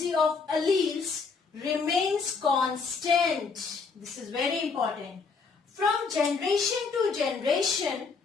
of alleles remains constant. This is very important. From generation to generation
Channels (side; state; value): right; quieter; 4.9 dB